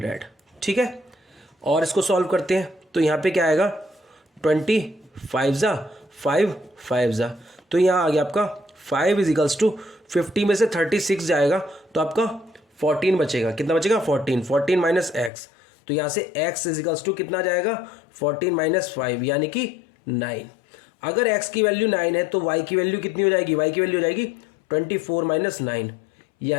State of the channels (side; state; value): right; drops out; at 15.3 s